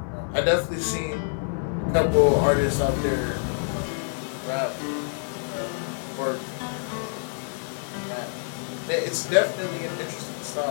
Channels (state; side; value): silent; right; digital silence